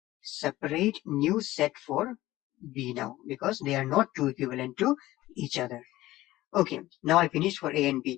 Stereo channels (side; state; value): right; quieter; 16.6 dB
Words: separate new set for B now because they are not 2 equivalent to each other. Okay, now I finished for A and